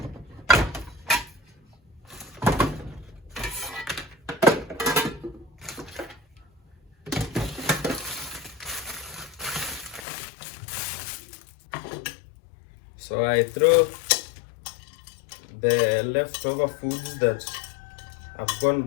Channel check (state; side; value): drops out; right; at 10.1 s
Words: So I throw the leftover foods that have gone